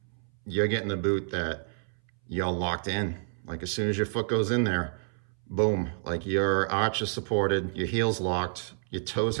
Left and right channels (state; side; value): silent; left; 58 dB below the other